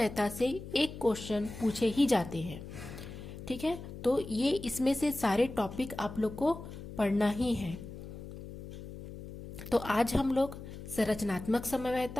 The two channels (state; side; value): noise; left; hum, 11 dB below the sound